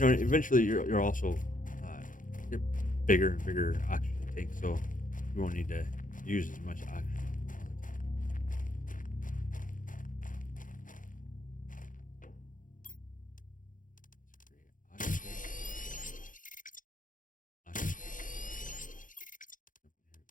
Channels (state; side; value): late; right; 0.38 ms